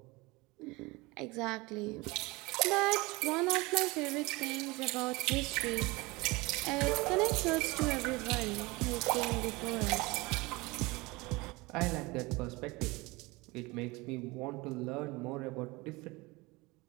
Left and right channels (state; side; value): quieter; left; 23.4 dB